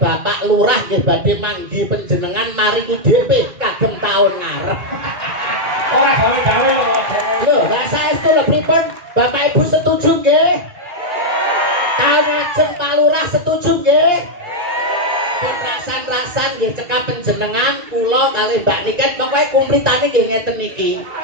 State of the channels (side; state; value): left; late; 2.4 ms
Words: Lurah nggih badhe manggi panjenengan maringi DP kagem taun ngarep. Ora gawe-gawe lho. Lho, saestu lho pripun Bapak Ibu setuju nggih? Taun ajeng Pak Lurah setuju nggih? Pun rasan-rasan nggih cekap panjenengan kula kalih Mbak Niken pokoke kumplitane nggih ngeten iki.